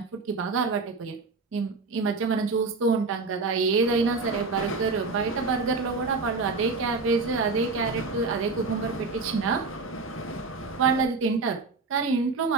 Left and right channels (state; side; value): quieter; left; 4.1 dB